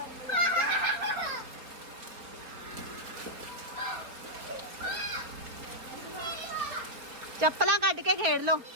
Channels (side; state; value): left; late; 4.1 ms